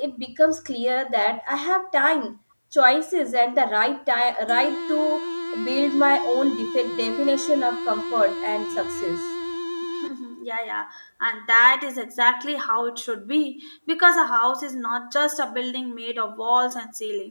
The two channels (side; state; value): both; inverted; correlation -1.00